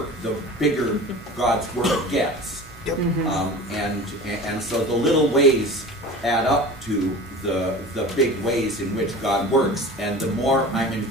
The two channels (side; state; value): both; normal; correlation 0.36